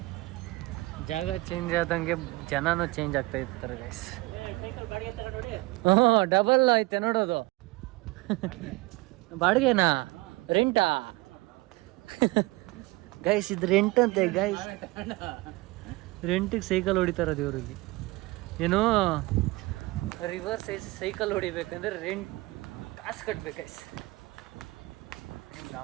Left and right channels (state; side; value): quieter; left; 21.9 dB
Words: ಜಾಗ ಚೇಂಜ್ ಆದಂಗೆ ಜನನೂ ಚೇಂಜ್ ಆಗ್ತಾ ಇರ್ತಾರೆ ಗೈಸ್. ಡಬಲ್ ಐತೆ ನೋಡೋದು. ಬಾಡಿಗೆನಾ, ರೆಂಟಾ ಗೈಸ್? ಇದು ರೆಂಟ್ ಅಂತೆ ಗೈಸ್. ರೆಂಟಿಗೆ ಸೈಕಲ್ ಹೊಡಿತಾರದು ಇವರಿಗೆ. ಏನೋ ರಿವರ್ ಸೈಕಲ್ ಹೊಡಿಬೇಕಂದ್ರೆ ರೆಂಟ್ ಕಾಸು ಕಟ್ಬೇಕು ಗೈಸ್. ನಿಮ್ಗೆ ಆ